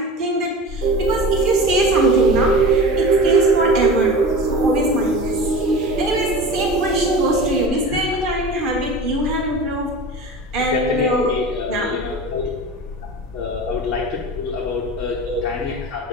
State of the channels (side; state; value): both; normal; correlation 0.34